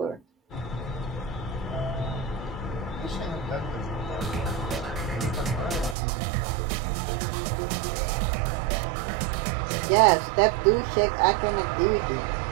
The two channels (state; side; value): drops out; left; at 6.0 s